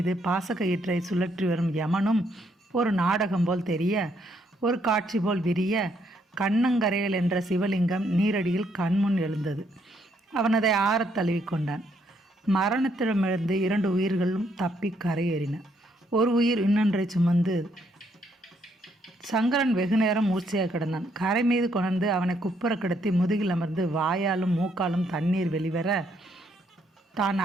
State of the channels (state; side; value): normal; both; correlation 0.72